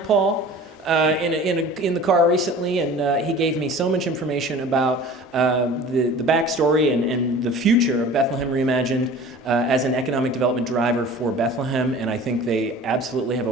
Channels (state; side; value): normal; both; correlation 0.42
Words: Paul, in the car recently, and he gave me so much information about the backstory and the future of Bethlehem Reimagined as an economic development driver for Bethlehem, and I think they absolutely have